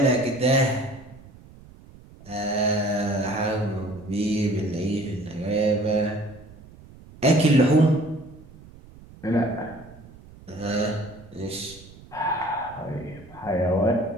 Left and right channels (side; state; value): right; noise; rumble, 21 dB below the sound